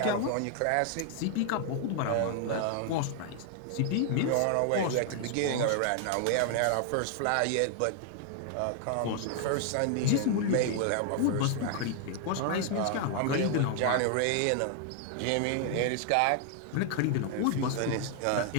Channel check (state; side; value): different; both; correlation 0.00